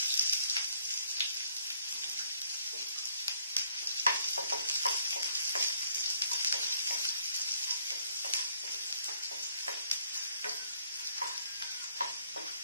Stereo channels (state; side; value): inverted; both; correlation -0.66